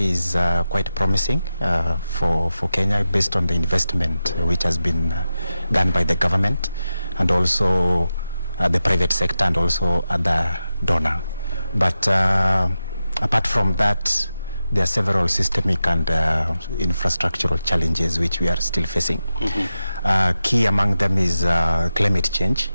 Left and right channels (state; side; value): inverted; both; correlation -0.92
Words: quite promising for Kenya, based on the investment which has been done by the government and also the private sector and also other donor. But apart from that, there are several systemic and infrastructural challenges which we are still facing. Key among them is climate change.